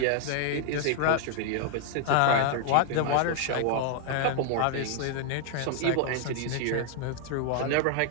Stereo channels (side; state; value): both; different; correlation 0.00